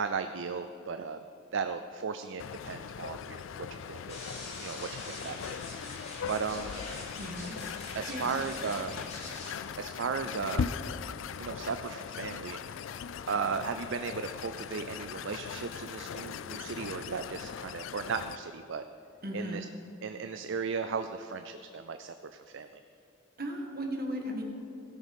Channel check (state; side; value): normal; both; correlation -0.03